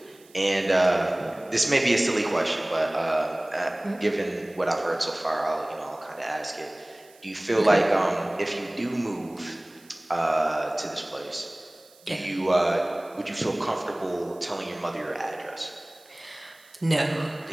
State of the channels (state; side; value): noise; right; hiss, 27 dB below the sound